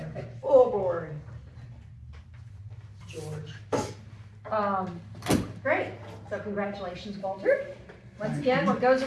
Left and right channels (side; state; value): both; identical; correlation 1.00